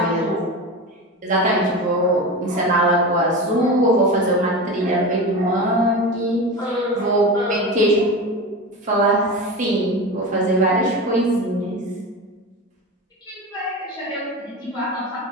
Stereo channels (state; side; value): normal; both; correlation 0.26